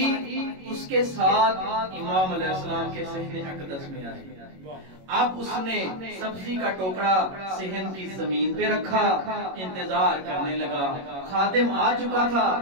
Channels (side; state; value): left; late; 21 ms